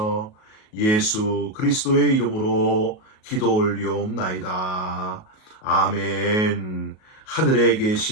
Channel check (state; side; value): late; right; 37 ms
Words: 예수 그리스도의 이름으로 기도 올리옵나이다. 아멘. 하늘에